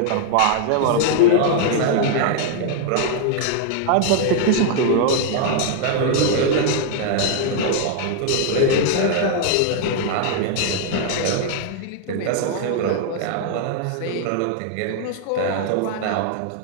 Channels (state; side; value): different; both; correlation 0.00